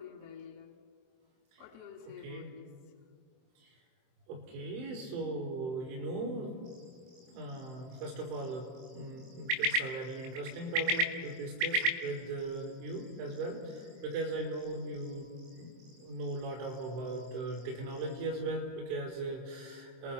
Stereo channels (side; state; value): left; late; 23 ms